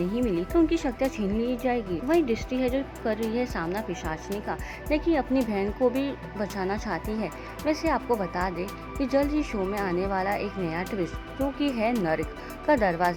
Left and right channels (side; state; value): both; identical; correlation 1.00